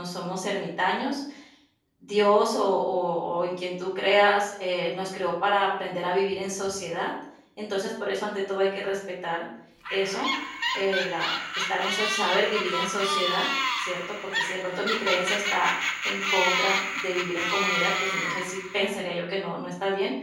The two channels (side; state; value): both; identical; correlation 1.00